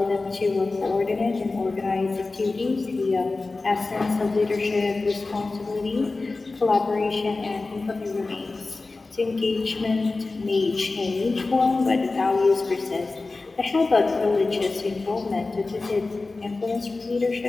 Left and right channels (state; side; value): quieter; right; 3.5 dB